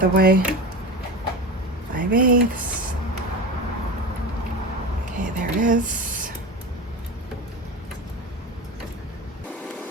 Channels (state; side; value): normal; both; correlation 0.27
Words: way. 5/8. Okay, there it is.